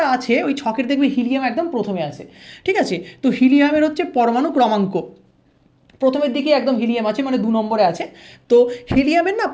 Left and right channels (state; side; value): identical; both; correlation 1.00